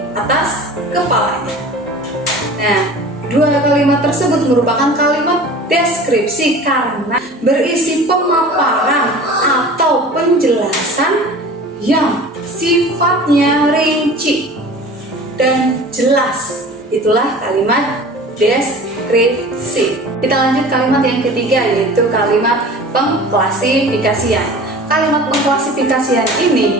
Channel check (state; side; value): normal; both; correlation 0.41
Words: atas kepalanya. Nah, dua kalimat tersebut merupakan kalimat deskripsi karena berisi pemaparan atau penjelasan yang sifatnya rinci dan jelas. Itulah kalimat deskripsi. Kita lanjut kalimat yang ketiga, yaitu kalimat pengklasifikasian. Kalimat pengklasifikasian